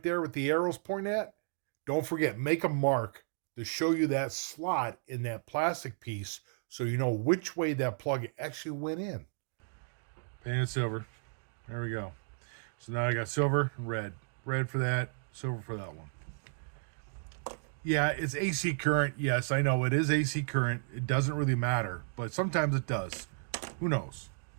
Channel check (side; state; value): left; silent; digital silence